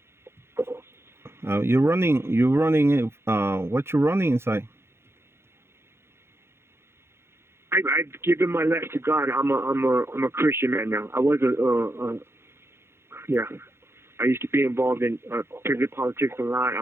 You're running. You running. What you running inside? I've given my life to God. I'm a Christian man now. I was yeah. I used to be involved in prison politics a lot.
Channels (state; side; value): late; left; 0.12 ms